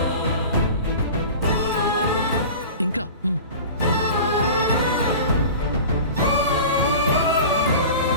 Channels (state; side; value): inverted; both; correlation -0.36